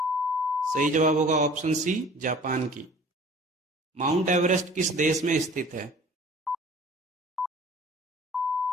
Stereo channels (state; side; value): normal; both; correlation 0.47